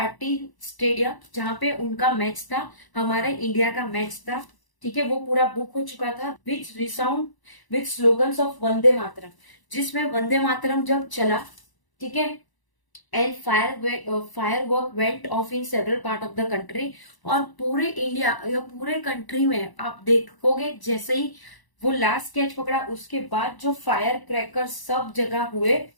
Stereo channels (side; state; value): right; late; 1.0 ms